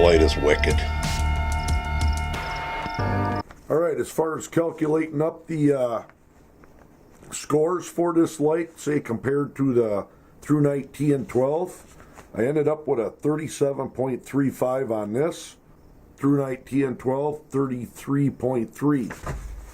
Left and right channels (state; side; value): identical; both; correlation 1.00